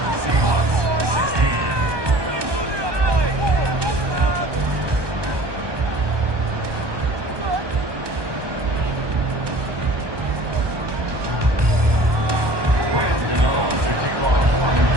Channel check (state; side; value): late; left; 1.2 ms